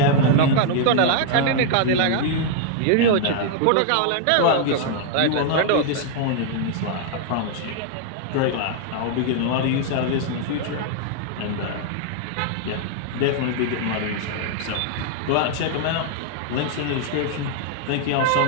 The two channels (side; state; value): both; different; correlation 0.00